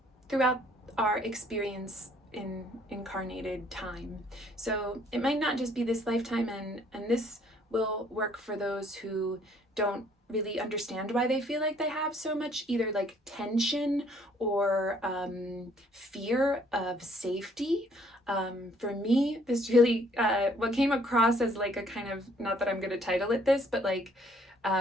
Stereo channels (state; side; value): normal; both; correlation 0.62